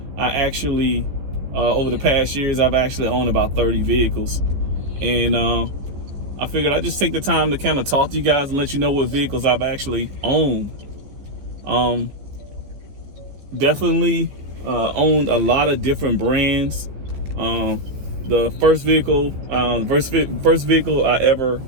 I actually over the past years, I've actually owned about 30 vehicles. And I figured I'd just take the time to kind of talk to you guys and let you know what vehicles I've actually owned. Definitely owned a lot of different brands. The first vehicle I ever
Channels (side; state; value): left; late; 15 ms